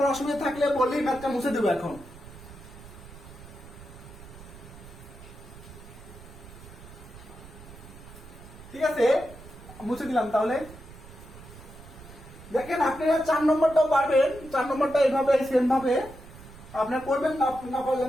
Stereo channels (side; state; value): right; noise; rumble, 17 dB below the sound